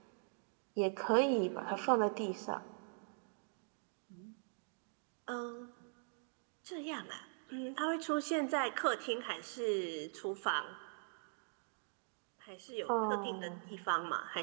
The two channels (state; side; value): silent; left; digital silence